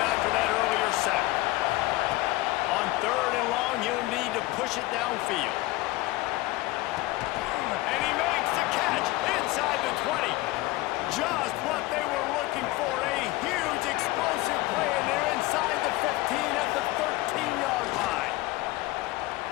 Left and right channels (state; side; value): quieter; right; 19.2 dB